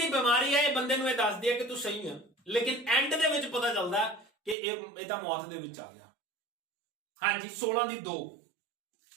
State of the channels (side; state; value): left; drops out; at 4.5 s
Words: ਬਿਮਾਰੀ ਹੈ ਇਹ ਬੰਦੇ ਨੂੰ ਇਹ ਦੱਸਦੀ ਹੈ ਕਿ ਤੂੰ ਸਹੀ ਹੈ, ਲੇਕਿਨ ਐਂਡ ਦੇ ਵਿੱਚ ਪਤਾ ਚੱਲਦਾ ਕਿ ਇਹ ਤਾਂ ਮੌਤ ਦੇ ਵਿੱਚ ਆ ਗਿਆ। ਹਾਂਜੀ 16 ਦੀ 2।